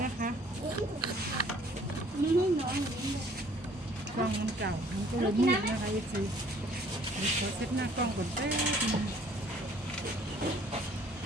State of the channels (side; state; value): both; normal; correlation 0.57